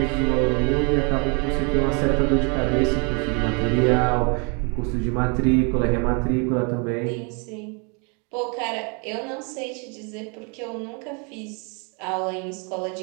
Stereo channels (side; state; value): left; quieter; 34.9 dB